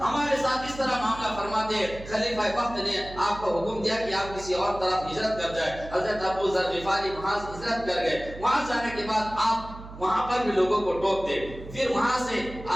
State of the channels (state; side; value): noise; right; hum, 14 dB below the sound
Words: ہمارے ساتھ اس طرح معاملہ فرماتے، خلیفہ وقت نے آپ کو حکم دیا کہ آپ کسی اور طرف ہجرت کر جائے۔ حضرت ابو ذر غفاری وہاں سے ہجرت کر گئے، وہاں جانے کے بعد آپ وہاں پر بھی لوگوں کو ٹوکتے، پھر وہاں سے